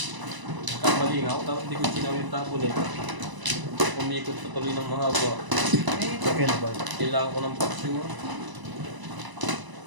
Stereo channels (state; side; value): late; left; 1.0 ms